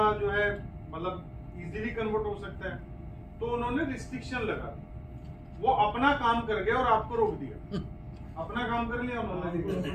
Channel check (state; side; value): identical; both; correlation 1.00